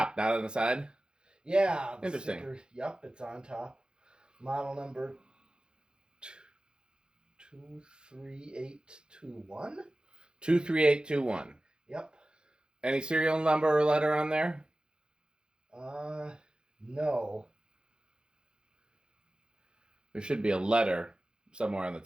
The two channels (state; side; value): late; left; 0.049 ms